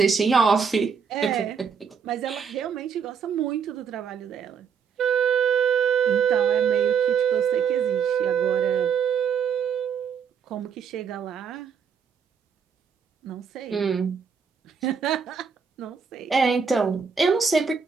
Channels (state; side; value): quieter; left; 6.5 dB